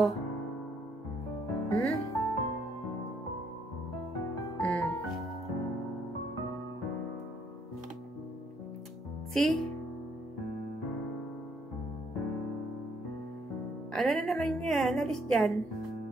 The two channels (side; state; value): both; normal; correlation 0.69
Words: See? Ano na naman yan? Alis dyan.